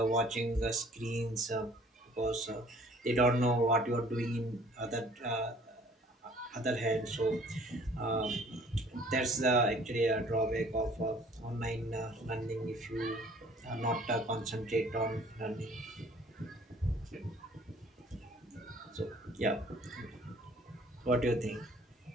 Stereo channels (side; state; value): both; normal; correlation 0.55